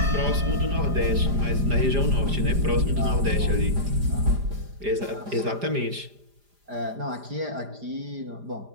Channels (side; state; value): left; late; 4.9 ms